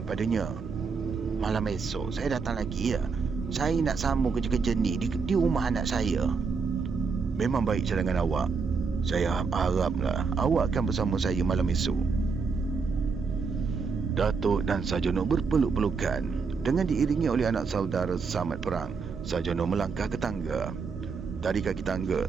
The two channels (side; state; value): left; quieter; 5.1 dB